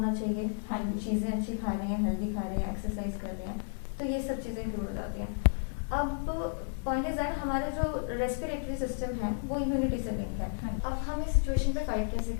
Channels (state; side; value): silent; right; 56 dB below the other